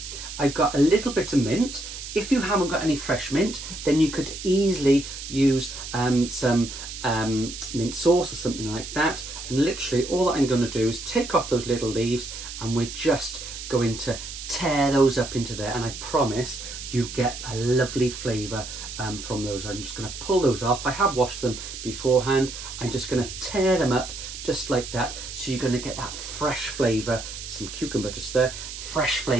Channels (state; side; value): noise; right; hiss, 10 dB below the sound